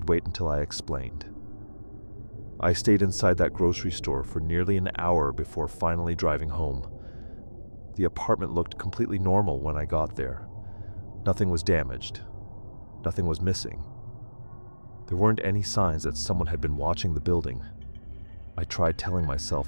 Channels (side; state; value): both; inverted; correlation -1.00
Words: wait until I explained. I stayed inside that grocery store for nearly an hour before finally driving home. The apartment looked completely normal when I got there. Nothing was damaged. Nothing was missing. There weren't any signs that someone had been watching the building. I tried telling